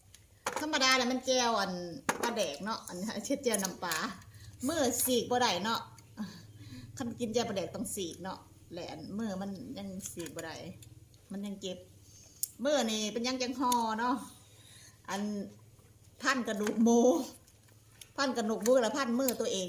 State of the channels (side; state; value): both; identical; correlation 1.00